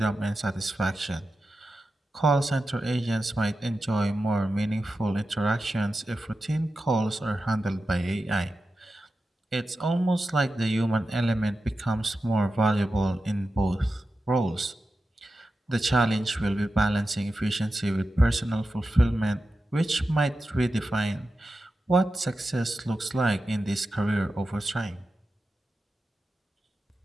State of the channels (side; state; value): both; normal; correlation 0.92